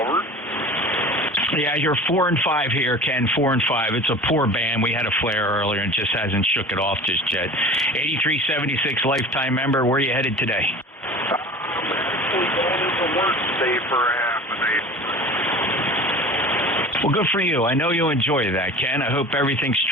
Yeah, you're 4 and 5 here, Ken. 4 and 5. It's a poor band. We had a flare earlier and just hasn't shook it off just yet. 8376 lifetime member. Where are you headed today? Actually going into work today for a half a day. Well, good for you. I know you enjoy that, Ken. I hope everything's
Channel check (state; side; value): normal; both; correlation 0.38